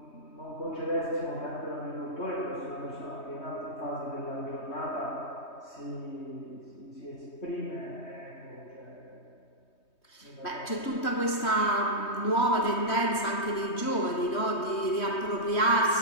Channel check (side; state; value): right; late; 3.2 ms